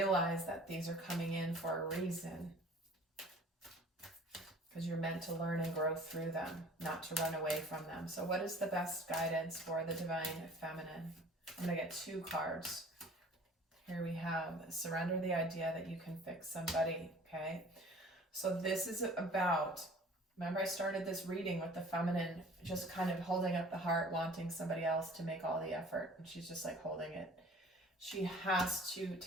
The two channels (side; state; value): both; normal; correlation 0.48